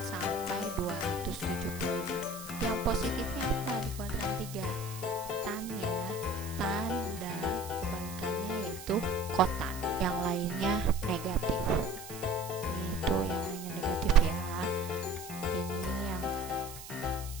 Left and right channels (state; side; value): noise; right; hiss, 13 dB below the sound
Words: sampai 270 derajat. Yang positifnya apa di kuadran 3? Tan ya, tan dan kebalikannya yaitu kotan. Yang lainnya negatif. Ini itu yang lainnya negatif ya. Ini yang